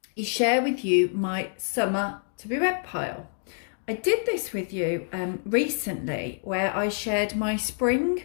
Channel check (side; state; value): right; silent; digital silence